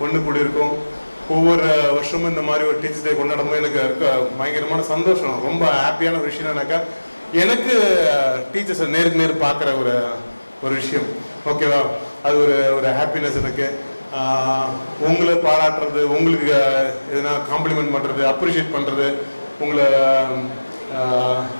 ஒன்று கூடி இருக்கோம். ஒவ்வொரு வருஷமும் இந்த மாதிரி ஒரு டீச்சர்ஸ் டே கொண்டாடும்போது எனக்கு இருக்க பயங்கரமான சந்தோஷம். ரொம்ப ஹாப்பியான ஒரு விஷயம் என்னன்னாக்கா எனக்கு டீச்சர்ஸை நேருக்கு நேர் பார்க்குற ஒரு விஷயம். ஓகேவா? அது ஒரு ஹாப்பினஸ் எனக்கு. உங்களை பாராட்டுறது, உங்களுக்கு எதுனா காம்ப்ளிமெண்ட் பண்ணுறது, அப்ரிஷியேட் பண்ணுறது, உங்களை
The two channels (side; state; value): both; inverted; correlation -1.00